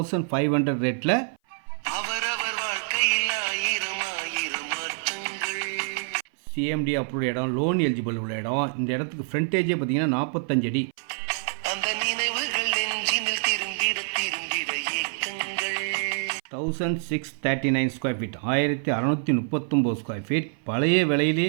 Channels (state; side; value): silent; left; 57 dB below the other